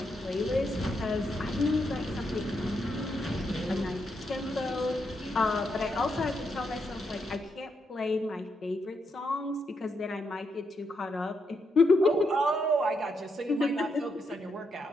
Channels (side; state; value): both; normal; correlation 0.81